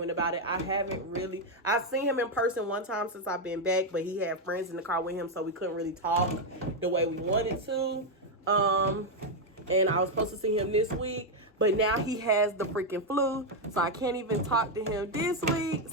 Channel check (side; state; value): both; normal; correlation 0.03